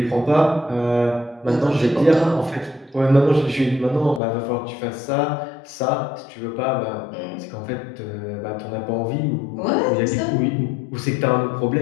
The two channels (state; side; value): drops out; right; at 4.2 s